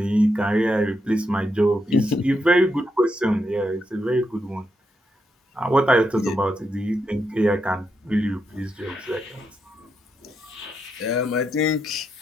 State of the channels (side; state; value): both; normal; correlation 0.82